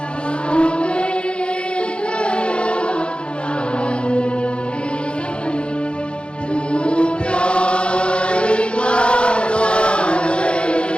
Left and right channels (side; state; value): right; late; 0.057 ms